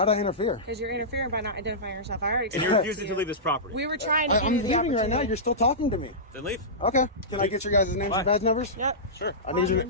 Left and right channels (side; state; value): both; normal; correlation -0.17